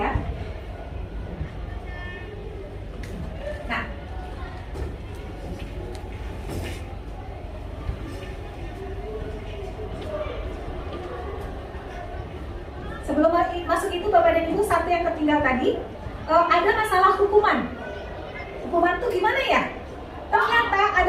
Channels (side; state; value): both; identical; correlation 1.00